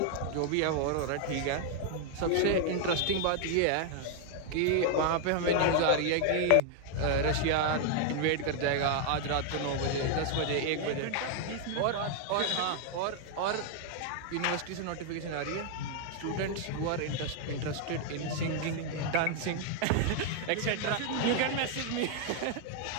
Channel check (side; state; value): both; different; correlation 0.00